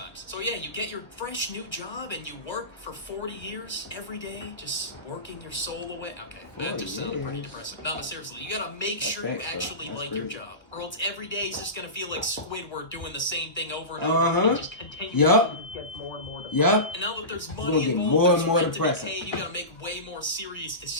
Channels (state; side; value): late; right; 1.3 ms